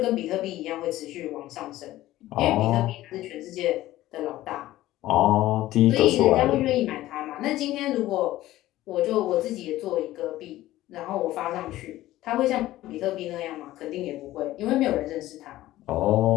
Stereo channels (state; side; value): quieter; right; 15.5 dB